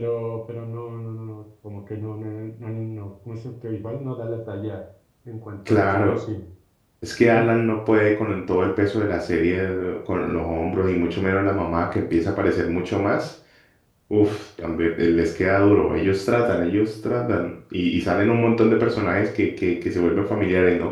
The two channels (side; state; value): both; identical; correlation 1.00